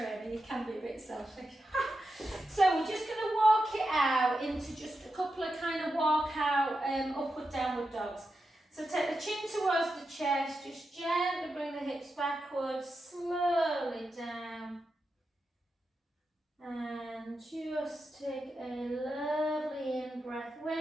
You can be a bit selfish. So, we're just going to walk it out into just a couple of kind of walkout upward, downward dogs. So, take the chin towards the chest. Just gently bring the hips backwards, slowly down. And just take a lovely in breath.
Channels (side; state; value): both; normal; correlation 0.88